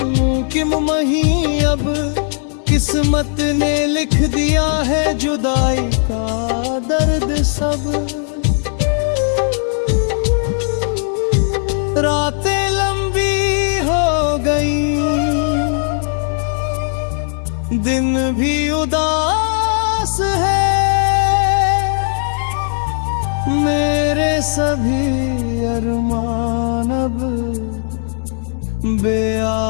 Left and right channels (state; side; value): silent; right; 56 dB below the other